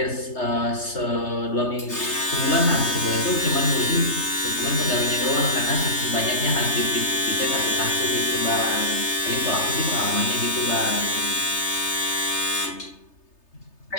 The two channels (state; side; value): late; right; 3.3 ms